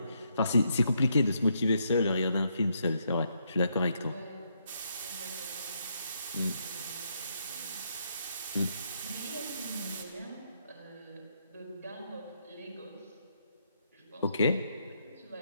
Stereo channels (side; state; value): both; inverted; correlation -0.76